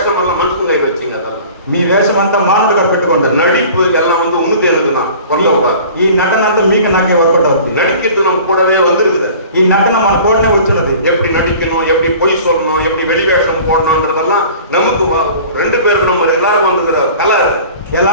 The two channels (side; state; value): both; inverted; correlation -0.44